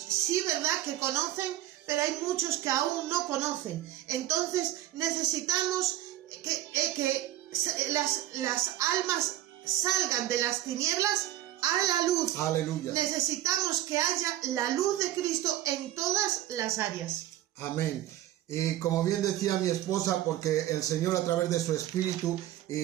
sí, ¿verdad?, que conocen, pero hay muchos que aún no conocen. Entonces necesitamos que las almas salgan de las tinieblas a la luz. Aleluya. Necesitamos que haya la luz de Cristo en todas las áreas. Amén. Y como bien decía mi esposa, porque el Señor a través de su Espíritu,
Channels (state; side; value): quieter; left; 13.9 dB